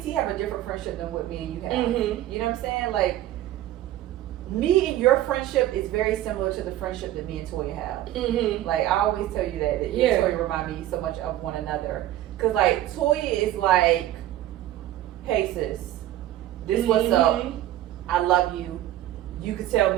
have a different friendship than what me and you have. Mm-hmm. You know what I'm saying? Like, me and your friendship is very similar to the friendship that me and Toya have. Mm-hmm. Like, I always tell you that you and Toya remind me so much of one another. Because, like, Toya is like, hey, sis, this what's up. I love you. You could tell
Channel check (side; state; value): left; quieter; 13.8 dB